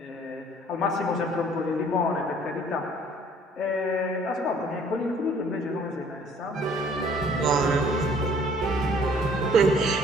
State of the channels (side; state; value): both; normal; correlation 0.57